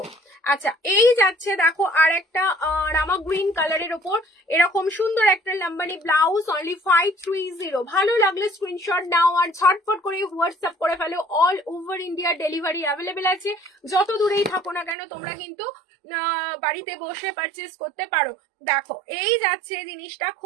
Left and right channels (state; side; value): drops out; left; at 15.0 s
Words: আচ্ছা এই যাচ্ছে দেখো আর একটা রামা গ্রিন কালারের ওপর এরকম সুন্দর একটা লাম্বানি ব্লাউজ, অনলি 530। ভালো লাগলে স্ক্রিনশট নাও আর ঝটপট করে হোয়াটসঅ্যাপ করে ফেলো। All over India delivery available আছে, যত দূরেই থাকো না কেন তোমরা কিন্তু বাড়িতে বসে পারচেস করতে পারো। দেখো এই যাচ্ছে জিনিসটা,